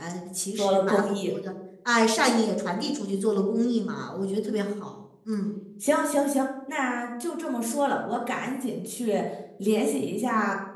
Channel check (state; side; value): identical; both; correlation 1.00